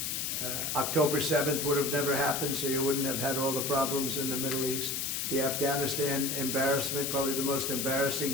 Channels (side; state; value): left; noise; hiss, 1 dB below the sound